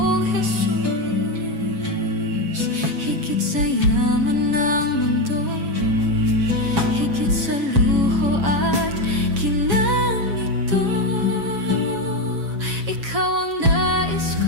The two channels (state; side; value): late; left; 7.2 ms